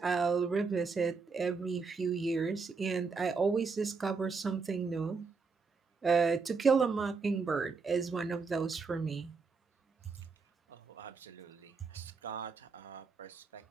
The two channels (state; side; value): quieter; left; 4.7 dB